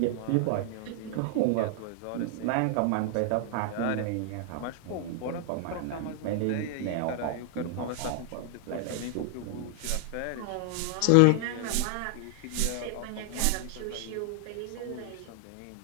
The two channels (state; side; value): different; both; correlation 0.00